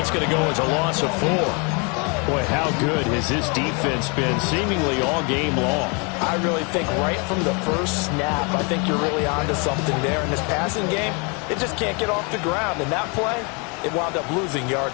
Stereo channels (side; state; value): right; quieter; 33.0 dB